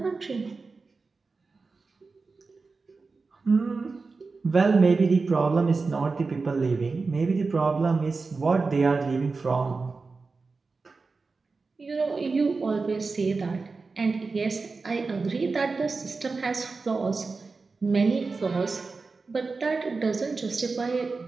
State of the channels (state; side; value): quieter; left; 4.2 dB